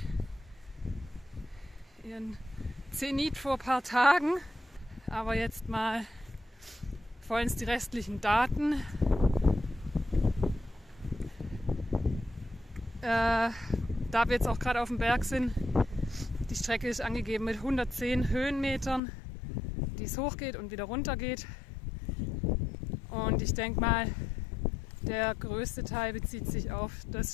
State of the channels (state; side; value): drops out; right; at 19.0 s